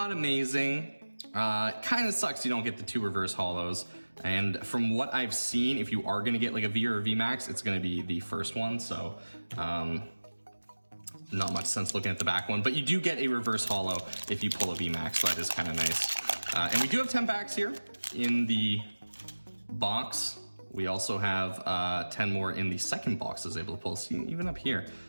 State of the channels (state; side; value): inverted; both; correlation -1.00